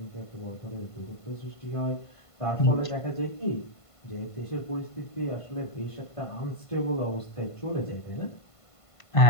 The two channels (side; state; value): right; late; 1.5 ms